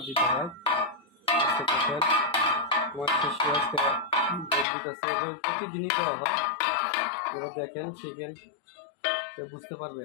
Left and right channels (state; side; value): drops out; right; at 4.7 s